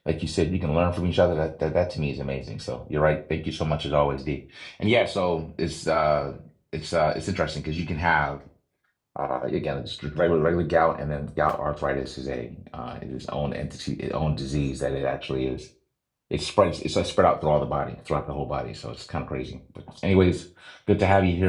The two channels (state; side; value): identical; both; correlation 1.00